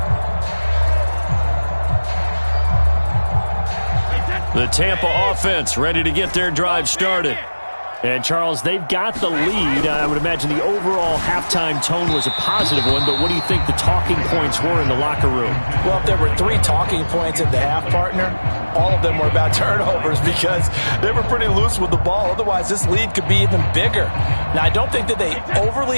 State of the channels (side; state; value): both; inverted; correlation -1.00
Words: The Tampa offense ready to get their drive started. And, Charles, they've got the lead. I would imagine the overall halftime tone was a positive one, but what do you think the talking points were in the locker room? Well, if there were 3 talking points at the half, partner, all of them were about turnovers because they were pretty loose with the ball. Otherwise, this lead could be even bigger. Now, I don't think that they overly